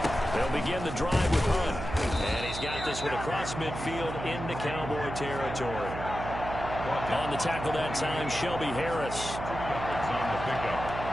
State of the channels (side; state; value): right; noise; hum, 7 dB below the sound